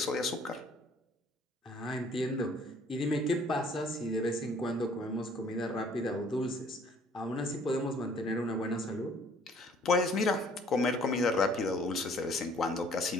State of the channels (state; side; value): normal; both; correlation 0.58